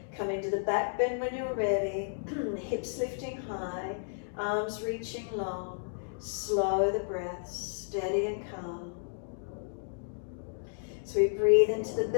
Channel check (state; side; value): silent; right; digital silence